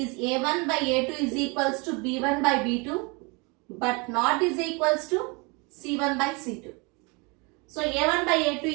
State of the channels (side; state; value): left; quieter; 29.6 dB